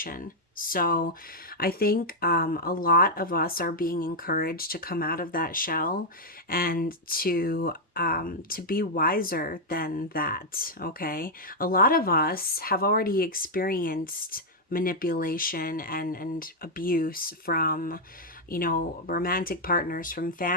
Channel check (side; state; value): both; normal; correlation -0.02